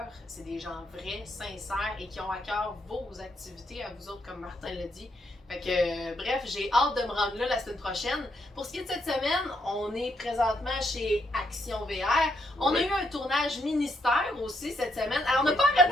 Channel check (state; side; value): normal; both; correlation 0.76